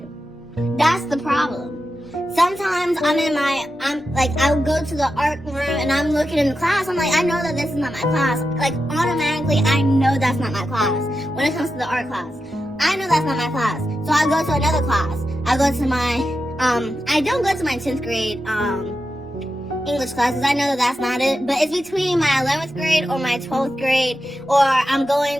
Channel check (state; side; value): normal; both; correlation 0.89